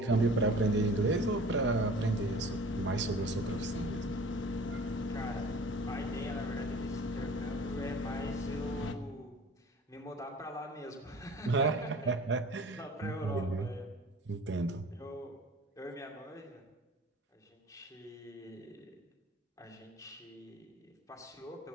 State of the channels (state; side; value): normal; both; correlation 0.45